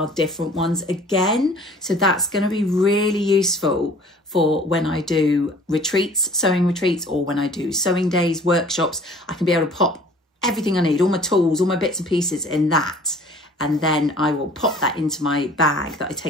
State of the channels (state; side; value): normal; both; correlation 0.50